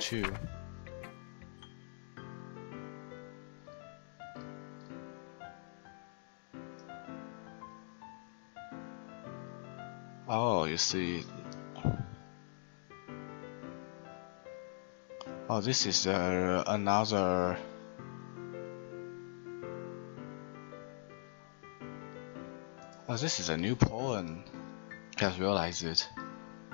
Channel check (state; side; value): silent; right; digital silence